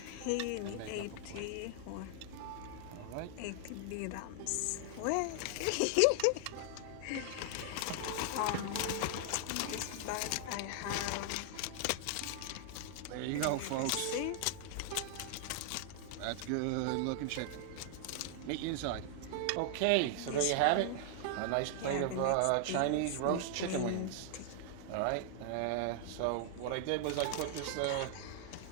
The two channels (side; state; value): both; different; correlation 0.00